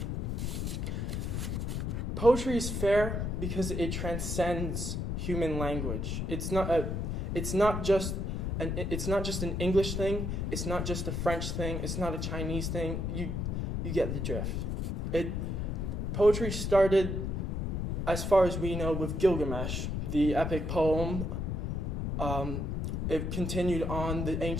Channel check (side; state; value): left; noise; rumble, 1 dB below the sound